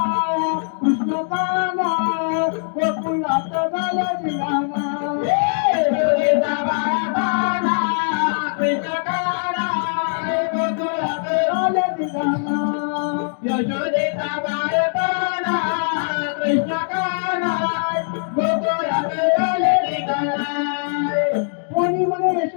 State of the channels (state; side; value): silent; right; digital silence